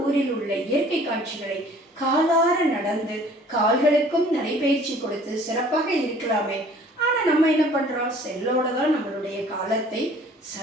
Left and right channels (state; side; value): normal; both; correlation 0.52